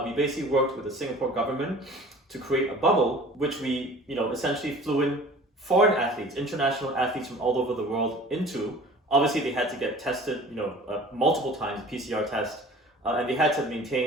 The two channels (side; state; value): both; normal; correlation 0.45